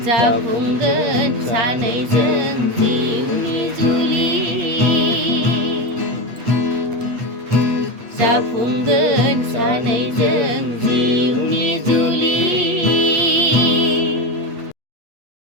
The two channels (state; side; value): late; left; 8.4 ms